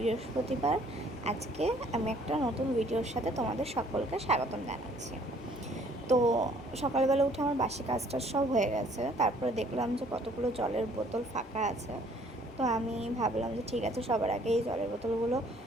আজকে আমি একটা নতুন ভিডিওর সাথে তোমাদের সকলকে স্বাগতম জানাচ্ছি। তো সকালবেলা উঠে আমার বাসি কাজটা সব হয়ে গেছে। তারপরে দেখলাম যে কতগুলো জলের বোতল ফাঁকা আছে। তো আমি ভাবলাম যে ঠিক আছে, সবার আগে এই জলের বোতলগুলো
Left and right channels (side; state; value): both; normal; correlation 0.59